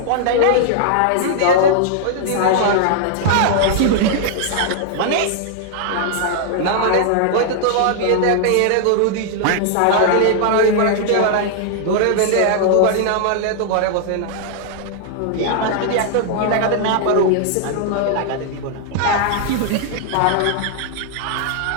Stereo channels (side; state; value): both; different; correlation -0.01